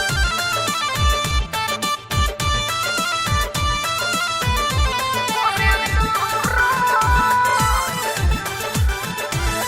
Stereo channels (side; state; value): both; identical; correlation 1.00